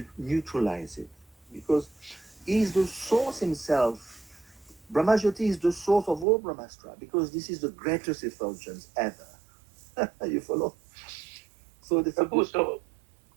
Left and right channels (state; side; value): drops out; left; at 6.2 s